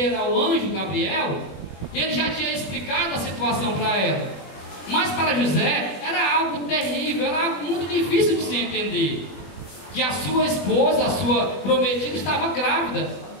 ao anjo Gabriel, ele já tinha explicado a situação para ela. Mas para José era algo terrível, era algo muito difícil de se entender. Que a sua esposa, a sua prometida, estava grávida.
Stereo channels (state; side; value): late; right; 21 ms